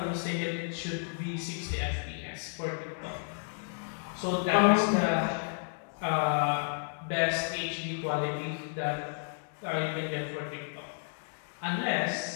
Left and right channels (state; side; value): silent; right; digital silence